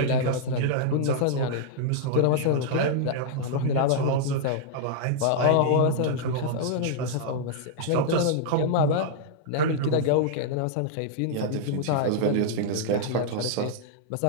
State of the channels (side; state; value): both; different; correlation -0.01